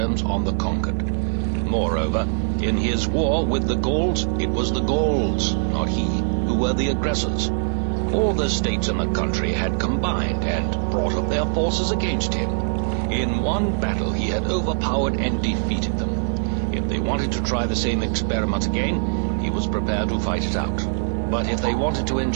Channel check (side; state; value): left; silent; 64 dB below the other